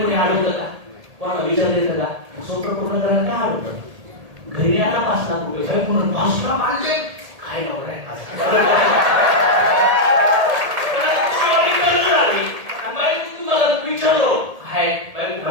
कोणी अडवतं का? कोणाला विचारलं येतं का? स्वतः पूर्ण करायला काय अडवतं? घरी आता 5 लाख रुपये काय पूर्ण 5 लाख आणले काय नवरा आहे तुम्हाला विचारलो हाय बाई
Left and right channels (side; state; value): left; late; 1.8 ms